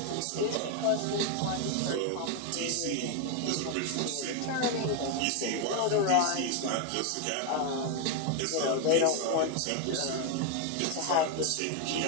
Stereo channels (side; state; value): both; different; correlation 0.01